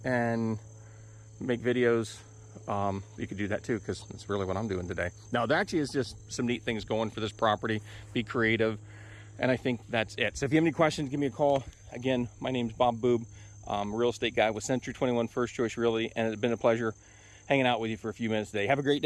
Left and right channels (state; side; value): identical; both; correlation 1.00